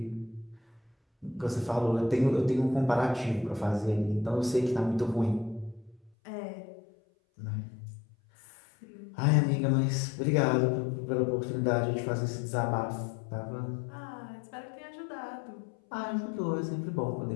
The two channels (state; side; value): drops out; right; at 6.1 s